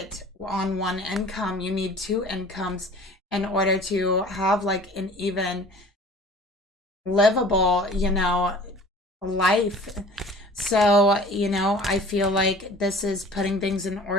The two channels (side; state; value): both; normal; correlation 0.46